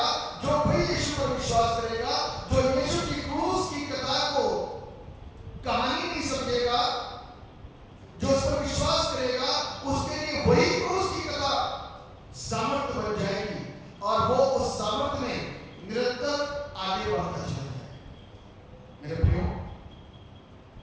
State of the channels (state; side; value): identical; both; correlation 1.00